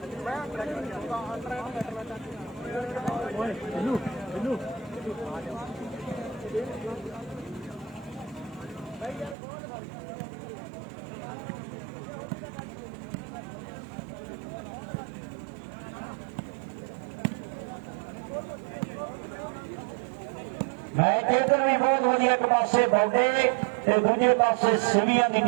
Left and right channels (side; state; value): left; drops out; at 9.3 s